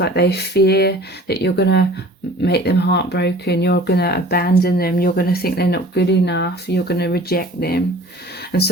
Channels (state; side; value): normal; both; correlation 0.46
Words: they fear that you're going to make them heartbroken, you're going to abandon them, you're going to think they're not good enough, you're going to reject them. And